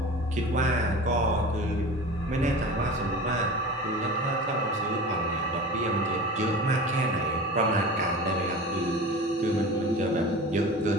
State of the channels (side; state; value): both; normal; correlation 0.35